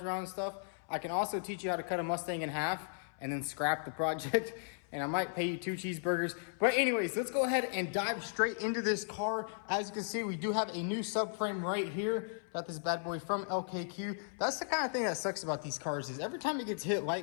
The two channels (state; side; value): silent; right; 54 dB below the other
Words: around and stuff, I can also teach you how to cut a Mustang in half and then scrap the project. And I might pay you 2 cheeseburgers. But anyways, let's go ahead and dive straight into this car. As you can see, we do have a new subframe right here. Got this bad boy from LKQ. That's the kind of thing that sucks about these cars, is every time it gets hit